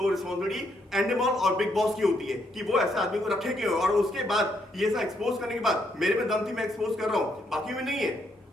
रिस्पॉन्सिबिलिटी एंडेमॉल और बिग बॉस की होती है कि वो ऐसे आदमी को रखे क्यों। और उसके बाद ये सब एक्सपोज करने के बाद, मेरे में दम थी, मैं एक्सपोज कर रहा हूं, बाकी में नहीं है।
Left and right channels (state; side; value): normal; both; correlation 0.75